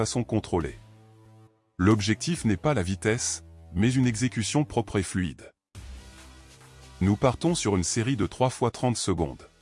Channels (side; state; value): both; identical; correlation 1.00